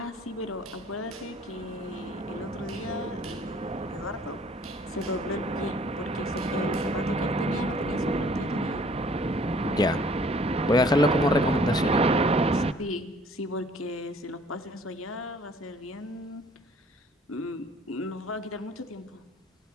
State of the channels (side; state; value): both; normal; correlation 0.55